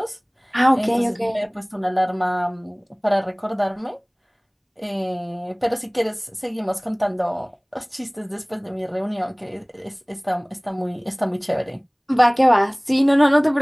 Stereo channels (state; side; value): identical; both; correlation 1.00